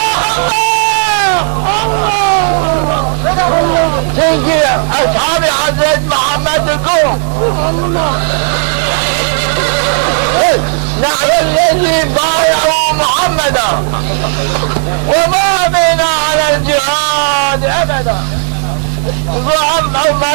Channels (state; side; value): silent; left; digital silence